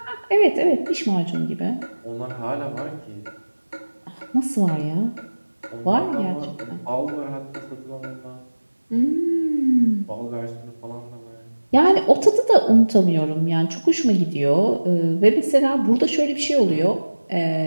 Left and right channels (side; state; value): both; inverted; correlation -1.00